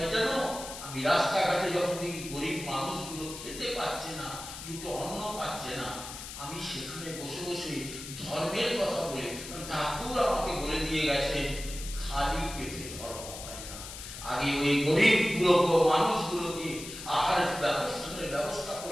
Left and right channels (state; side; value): noise; left; hiss, 10 dB below the sound